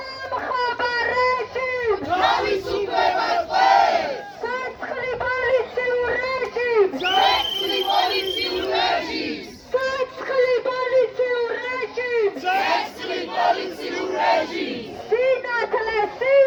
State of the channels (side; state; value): both; identical; correlation 1.00